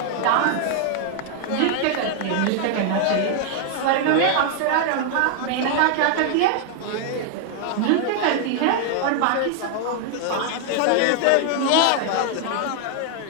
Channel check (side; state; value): both; different; correlation 0.00